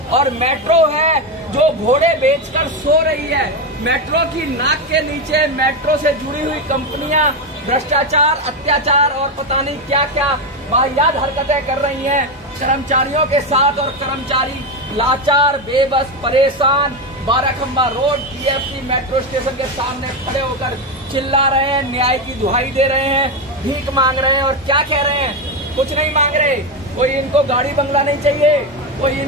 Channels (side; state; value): both; normal; correlation 0.11